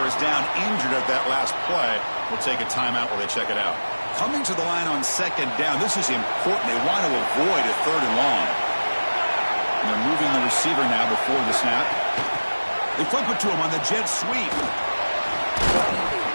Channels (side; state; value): both; inverted; correlation -1.00